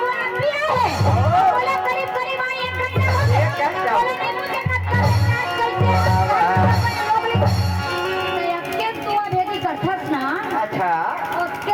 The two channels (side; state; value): both; identical; correlation 1.00